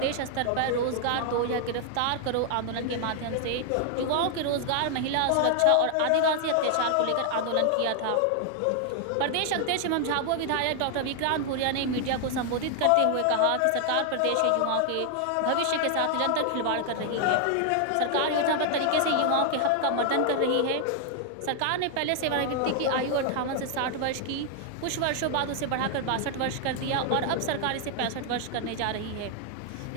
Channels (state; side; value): different; both; correlation 0.00